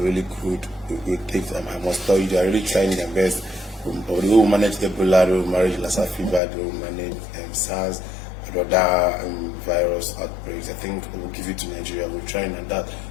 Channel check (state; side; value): drops out; right; at 6.4 s